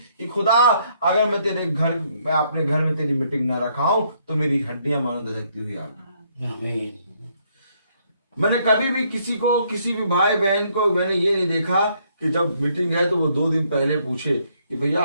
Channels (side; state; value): both; inverted; correlation -0.70